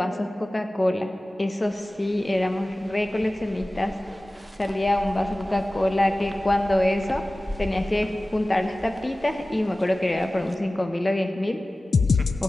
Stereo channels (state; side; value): normal; both; correlation 0.97